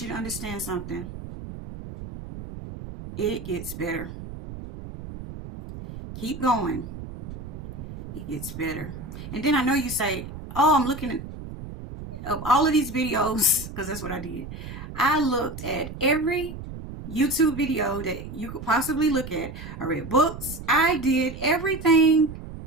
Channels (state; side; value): noise; right; rumble, 11 dB below the sound